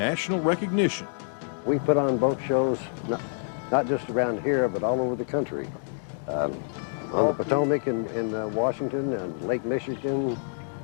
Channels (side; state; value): right; silent; digital silence